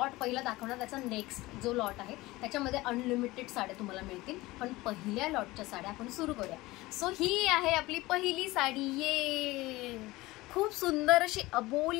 पहिला दाखवणार, त्याचा नेक्स्ट जो लॉट आहे त्याच्यामध्ये अनलिमिटेड साड्या तुम्हाला मिळतील. पण पहिल्या लॉटच्या साड्या आपण सुरू करूया. सो ही आहे आपली पहिली साडी. ये खूप सुंदर अशी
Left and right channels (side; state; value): right; quieter; 19.7 dB